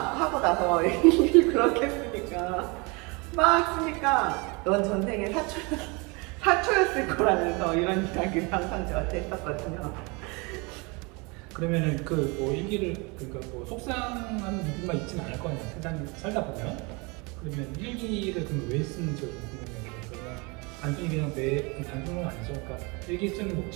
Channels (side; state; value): left; quieter; 28.6 dB